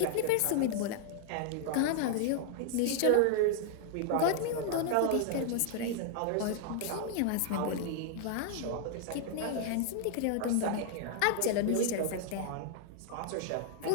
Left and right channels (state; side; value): different; both; correlation -0.01